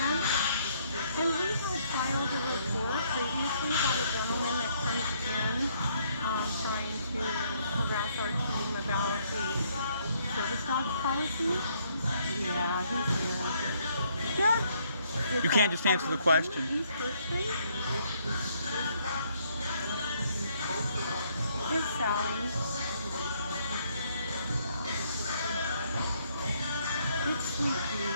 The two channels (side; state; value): both; inverted; correlation -0.69